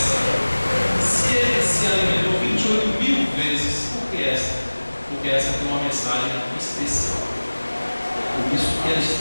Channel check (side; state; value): both; inverted; correlation -1.00